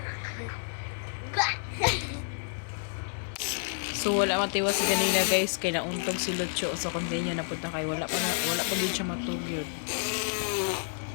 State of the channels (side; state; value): right; silent; digital silence